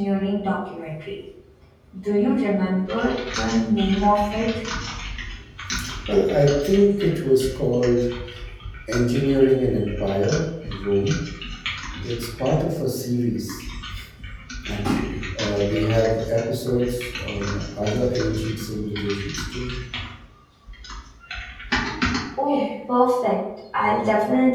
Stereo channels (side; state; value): both; identical; correlation 1.00